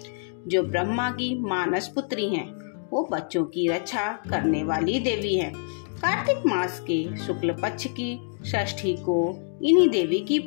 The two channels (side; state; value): right; silent; 61 dB below the other